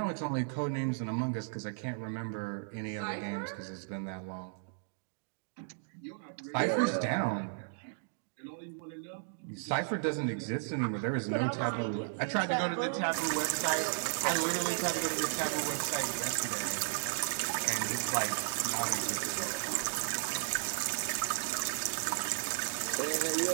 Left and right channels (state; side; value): silent; left; digital silence